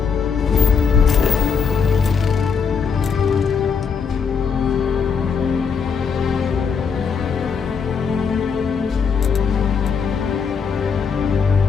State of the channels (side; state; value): right; quieter; 6.1 dB